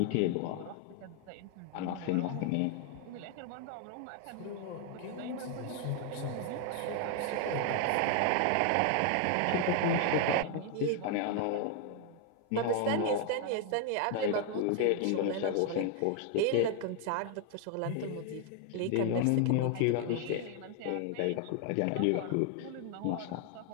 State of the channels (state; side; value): different; both; correlation 0.00